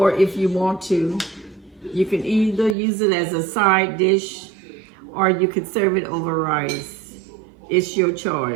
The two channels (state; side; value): drops out; left; at 2.8 s